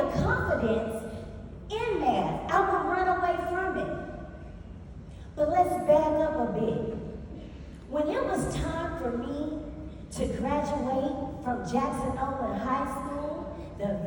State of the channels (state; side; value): identical; both; correlation 1.00